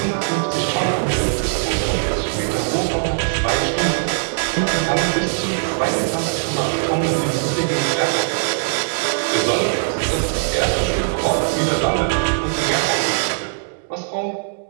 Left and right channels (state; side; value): silent; left; digital silence